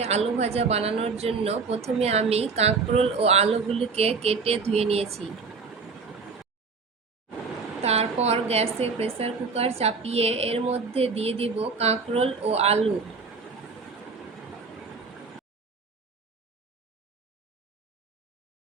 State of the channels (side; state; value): left; quieter; 4.7 dB